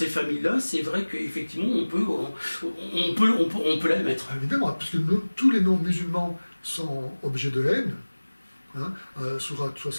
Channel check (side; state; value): both; inverted; correlation -1.00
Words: familles-là, c'est vrai qu'effectivement on peut l'admettre. Évidemment, puisque tous les non-musulmans sont objets de haine. Hein, Sourate